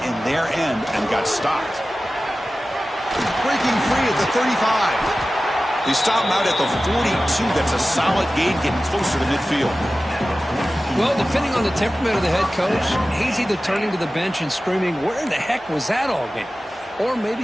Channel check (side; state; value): both; normal; correlation 0.96